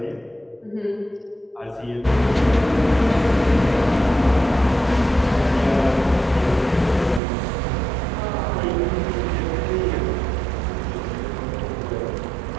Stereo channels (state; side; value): drops out; left; at 7.2 s